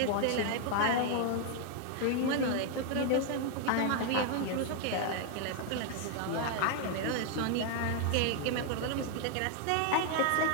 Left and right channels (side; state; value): both; different; correlation 0.00